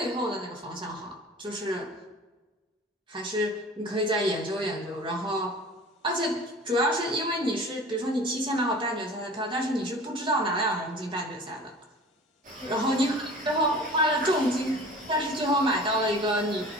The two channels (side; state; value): both; normal; correlation 0.41